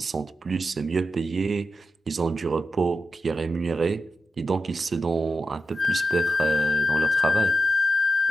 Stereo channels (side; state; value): both; normal; correlation 0.90